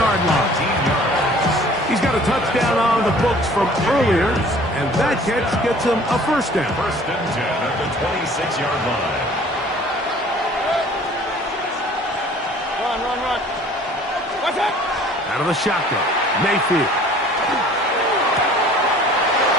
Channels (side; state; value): both; normal; correlation 0.51